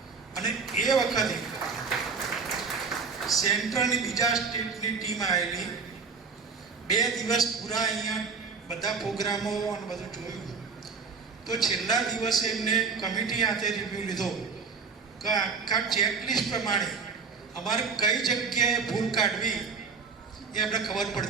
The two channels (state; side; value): quieter; left; 5.2 dB